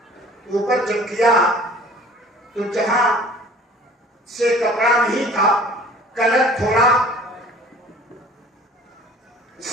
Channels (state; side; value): normal; both; correlation 0.48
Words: اوپر جب کیا تو جہاں سے کپڑا نہیں تھا، کلر تھوڑا